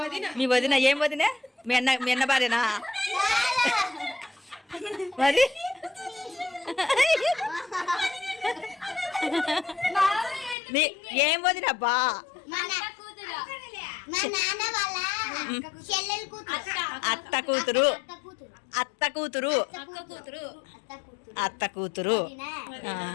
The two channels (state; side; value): drops out; right; at 10.6 s